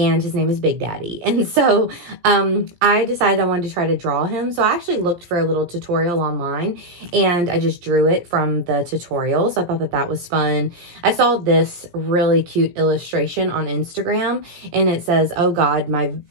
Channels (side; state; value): left; late; 17 ms